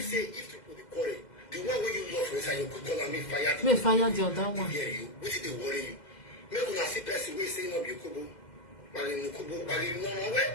say if you put the correct. The one where you love is you could call me fire. Me fire the other one. Hear you. What did they worry you? Make una see person we say no be kubo. Bali no kubo, bali no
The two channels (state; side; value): late; right; 2.1 ms